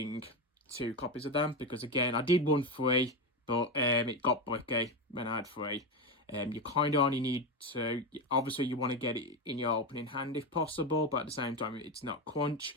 2 copies of them because, again, I did run 3, but it got bricky when I had 3. You kind of only need to, obviously you want to get it in your opening hand if possible, but at the same time it's not crunch.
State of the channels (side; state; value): both; normal; correlation 0.14